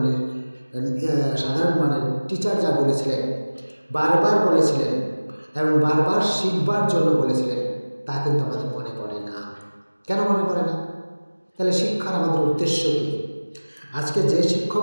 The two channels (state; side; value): inverted; both; correlation -1.00